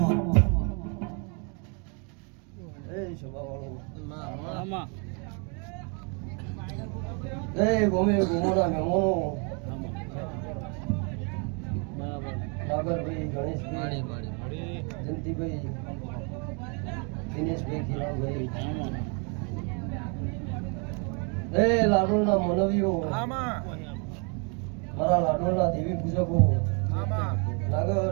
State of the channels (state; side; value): quieter; left; 35.7 dB